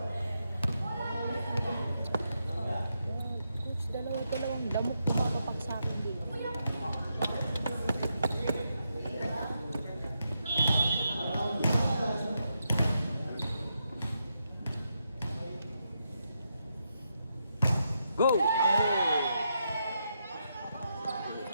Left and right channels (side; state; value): both; inverted; correlation -0.83